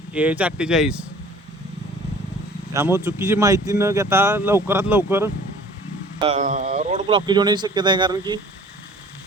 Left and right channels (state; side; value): normal; both; correlation 0.49